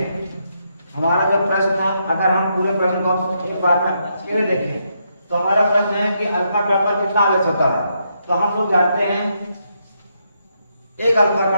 हमारा जो प्रश्न है, अगर हम पूरे प्रश्न को एक बार में अच्छे से देखें तो हमारा प्रश्न है कि अल्फा कण पर कितना आवेश होता है। तो हम लोग जानते हैं एक अल्फा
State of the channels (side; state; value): both; inverted; correlation -0.79